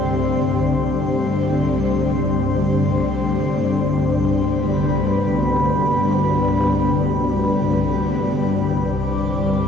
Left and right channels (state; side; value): normal; both; correlation 0.63